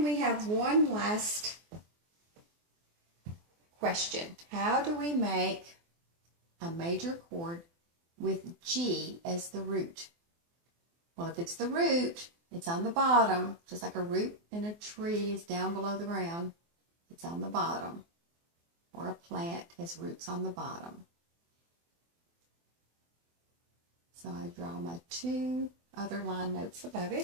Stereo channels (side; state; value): left; late; 24 ms